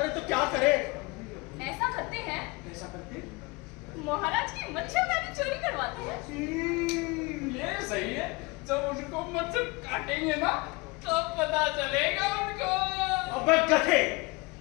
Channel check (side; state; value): right; quieter; 25.7 dB